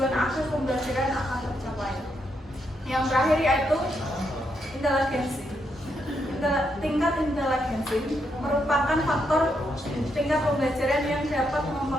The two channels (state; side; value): normal; both; correlation 0.79